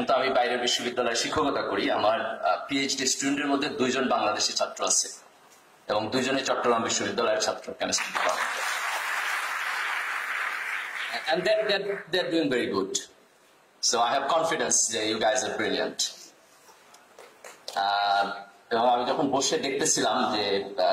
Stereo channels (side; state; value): both; identical; correlation 1.00